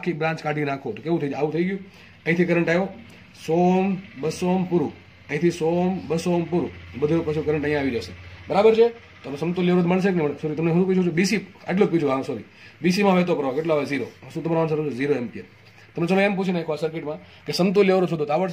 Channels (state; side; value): identical; both; correlation 1.00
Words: બ્રાન્ચ કાઢી નાખો તો કેવું થઈ જાય? આવું થઈ ગયું. અહીંથી કરંટ આવ્યો 100 200 પૂરું. અહીંથી 100 200 પૂરું. બધું પછી કરંટ અહીંયા આવી જશે. બરાબર છે? તો સમતુલ્ય અવરોધ મળશે કે નહીં? સોરી તમને શું પૂછું છું? બીસી આટલું જ પૂછું. હા સોરી, બીસીમાં વહેતો પ્રવાહ કેટલો આવે? 0. શું તમારો આન્સર છે? 0 એમ્પિયર. તમે ચલો એમ પૂછી નાખો આ સર્કિટમાં કે સમતુલ્ય અવરોધ શોધો તો